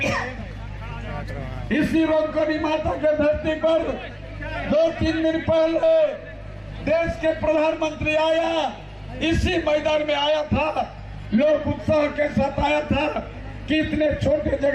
इसी रोकनी माता के धरती पर 2-3 दिन पहले देश के प्रधानमंत्री आया, इसी मैदान में आया था। लोग उत्साह के साथ आया था कि इतने छोटे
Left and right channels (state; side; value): identical; both; correlation 1.00